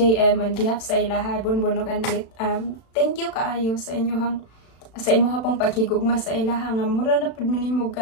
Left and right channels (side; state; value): right; late; 36 ms